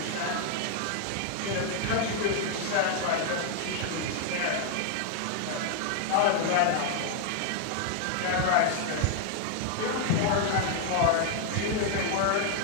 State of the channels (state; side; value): different; both; correlation 0.00